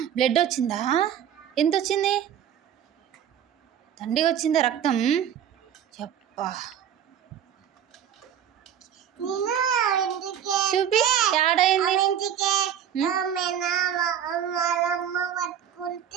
బ్లడ్ వచ్చిందా? ఎంత వచ్చింది? తండ్రి వచ్చిందా రక్తం? చెప్పా చూపి ఏడైంది?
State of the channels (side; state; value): left; quieter; 9.4 dB